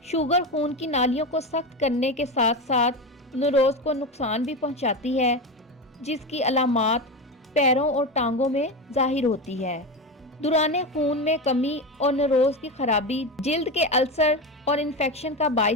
शुगर खून की नालियों को सख्त करने के साथ साथ नौरोज को नुकसान भी पहुंचाती है, जिसकी अलामात पैरों और टांगों में जाहिर होती है। दुराने खून में कमी और नौरोज की खराबी जिल्द के अल्सर और इन्फेक्शन का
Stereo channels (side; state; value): both; normal; correlation 0.19